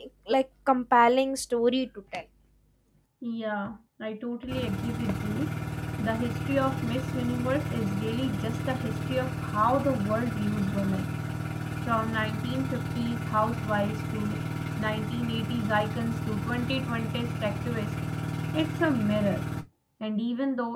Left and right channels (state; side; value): identical; both; correlation 1.00